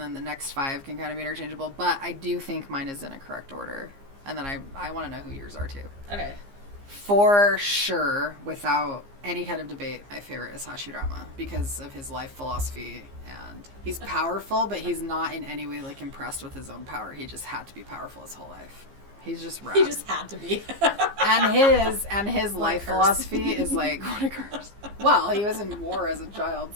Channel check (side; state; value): left; late; 15 ms